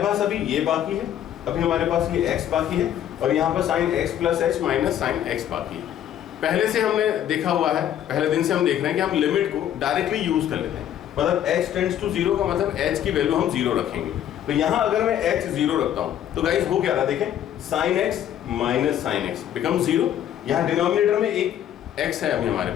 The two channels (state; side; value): quieter; right; 10.7 dB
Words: पास अभी ये बाकी है, अभी हमारे पास ये x बाकी है और यहाँ पर sine x plus h minus sine x बाकी है। पहले से हमने देखा हुआ है, पहले दिन से हम देख रहे हैं कि हम लिमिट को डायरेक्टली यूज कर लेते हैं, मतलब h टेंड्स टू 0 का मतलब h की वैल्यू हम 0 रखेंगे। तो यहाँ अगर मैं h 0 रखता हूँ तो गाइस हो क्या रहा, देखें sine x minus sine x become 0, यहाँ डिनोमिनेटर में एक x है अभी हमारे